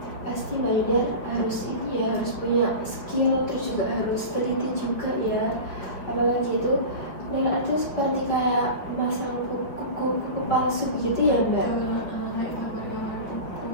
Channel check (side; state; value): right; late; 5.4 ms